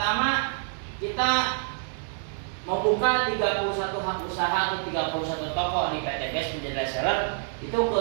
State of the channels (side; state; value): left; silent; digital silence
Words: kita membuka 31 hak usaha atau 31 toko di PTPS menjadi reseller. Itu